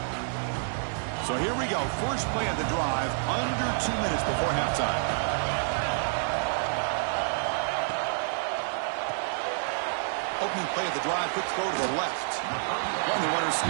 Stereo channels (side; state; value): left; silent; 59 dB below the other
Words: So here we go. First play of the drive, under 2 minutes before halftime. Opening play of the drive, quick throw to the left. And the runner